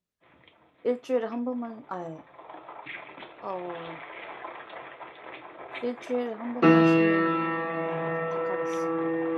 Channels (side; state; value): both; identical; correlation 1.00